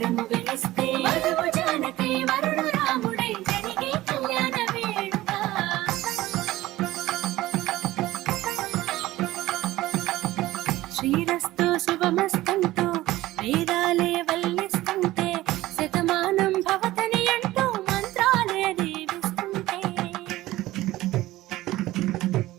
శ్రీరస్తు శుభమస్తంటూ వేదాలే వల్లిస్తుంటే శతమానం భవతని అంటూ మంత్రాలే దీవిస్తుంటే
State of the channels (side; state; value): left; quieter; 16.8 dB